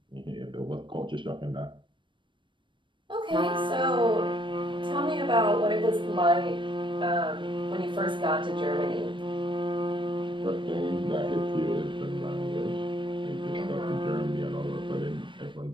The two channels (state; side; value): late; left; 0.24 ms